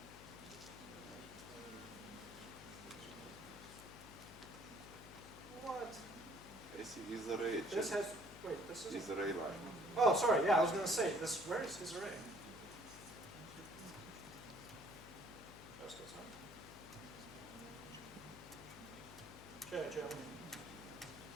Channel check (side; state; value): left; noise; hum, 15 dB below the sound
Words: What? I see isArray. This has, wait, this is isArray line. Oh, sorry, yeah, I was going to say, where is isArray? Just goes on.